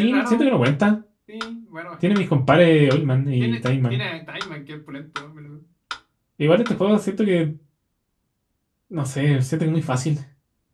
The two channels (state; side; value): identical; both; correlation 1.00